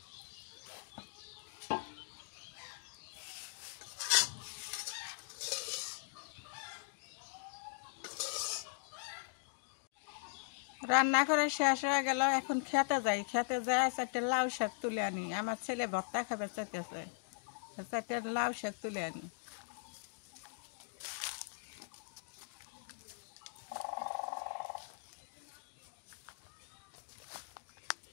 রান্না করে শেষ হয়ে গেল, এখন খেতে যাই, খেতে যাই চারটে লাউ শাক তুলে আনি, আমার ছেলে ভর্তা খাবে চাইতেছে, চারটে লাউ শাক তুলে আনি।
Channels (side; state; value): right; silent; digital silence